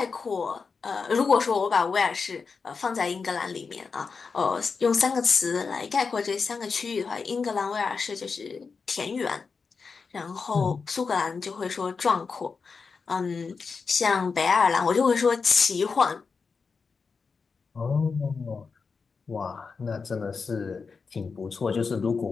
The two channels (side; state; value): right; quieter; 5.0 dB